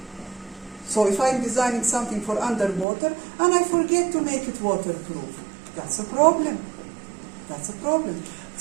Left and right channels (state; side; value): drops out; left; at 2.9 s